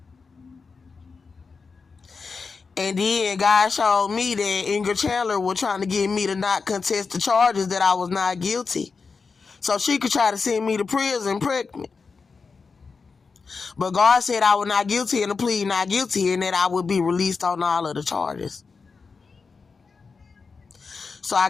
And then God showed me that Ingrid Chandler was trying to get me to not contest the charges, that I was not guilty, so she could try to send me to prison pregnant. But God said I was not guilty and to plead not guilty, and that I would be released on all of the charges. So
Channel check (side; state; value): right; quieter; 4.8 dB